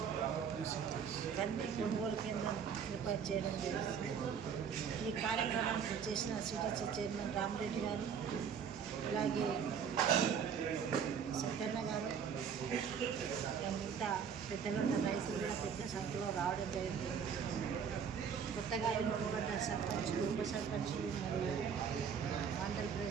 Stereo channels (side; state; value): left; quieter; 7.1 dB